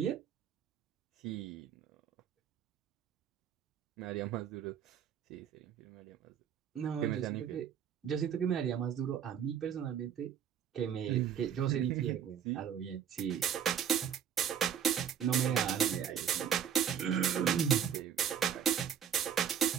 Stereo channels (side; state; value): left; quieter; 8.6 dB